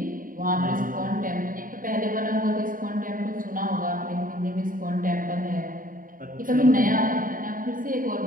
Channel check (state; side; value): late; left; 0.40 ms